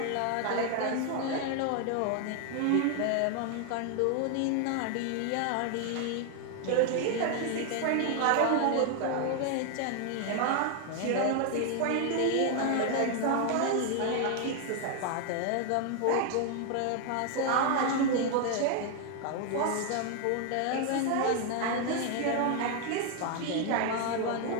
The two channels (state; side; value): different; both; correlation 0.00